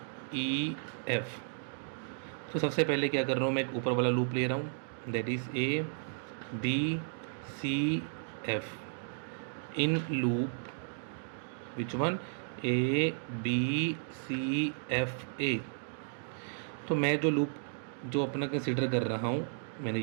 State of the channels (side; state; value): left; silent; digital silence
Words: E F। तो सबसे पहले क्या कर रहा हूँ, मैं एक ऊपर वाला लूप ले रहा हूँ, that is A B C F in loop which one, A B C F A। तो मैं जो लूप जो अपना कंसिडर कर रहा हूँ, मैंने